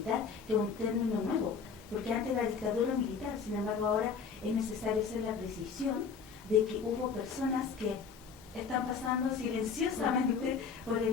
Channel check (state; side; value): quieter; right; 5.8 dB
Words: que es un término nuevo, porque antes era dictadura militar, sin embargo ahora es necesario hacer la precisión de que hubo personas que están pasando silenciosamente por